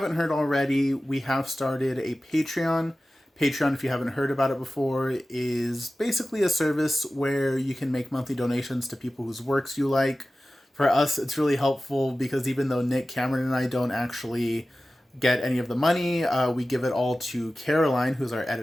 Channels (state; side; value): normal; both; correlation 0.95